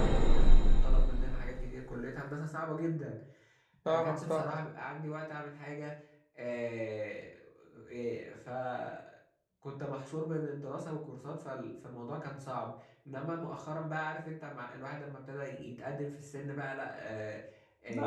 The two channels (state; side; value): identical; both; correlation 1.00